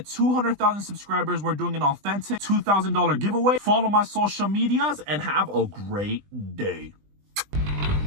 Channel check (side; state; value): left; late; 20 ms